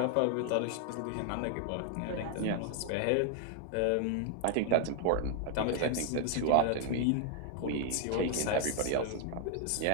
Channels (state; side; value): different; both; correlation 0.00